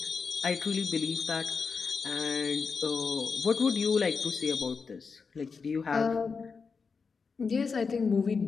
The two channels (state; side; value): quieter; right; 5.1 dB